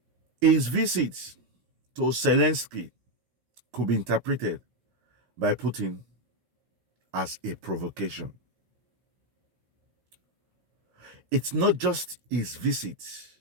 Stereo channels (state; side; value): late; left; 16 ms